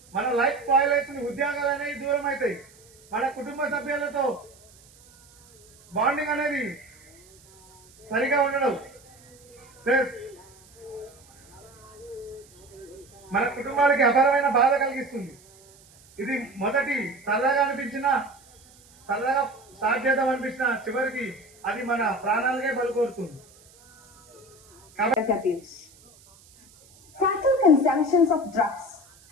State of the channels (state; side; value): noise; right; hiss, 27 dB below the sound